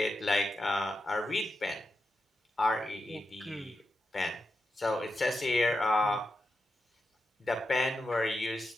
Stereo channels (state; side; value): normal; both; correlation 0.88